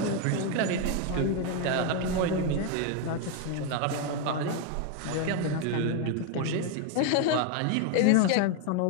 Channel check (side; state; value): both; different; correlation 0.01